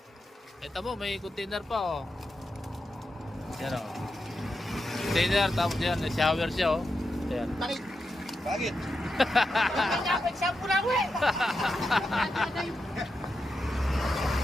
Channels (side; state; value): both; normal; correlation 0.87